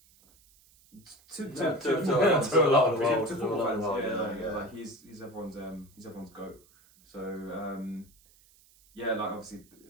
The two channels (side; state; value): right; noise; hiss, 29 dB below the sound